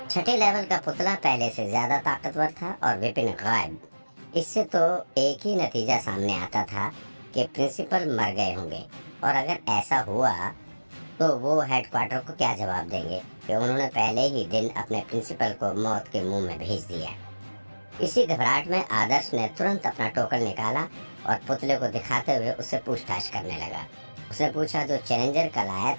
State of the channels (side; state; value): both; inverted; correlation -1.00